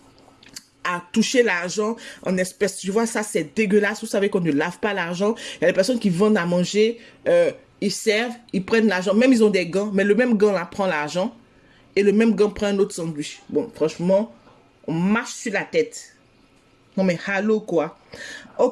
à toucher l'argent en espèces. Tu vois, ça, c'est dégueulasse. Vous savez qu'on ne lave pas l'argent. Il y a des personnes qui vendent à manger, ils servent, ils prennent l'argent. Même ils ont des gants, mais le même gant là prend l'argent et le même gant prend un autre sandwich. Bon, franchement, on marche sur la tête. Non mais, allô, quoi.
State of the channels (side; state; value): both; identical; correlation 1.00